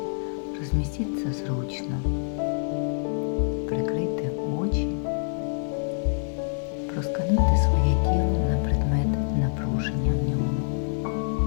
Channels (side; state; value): right; silent; digital silence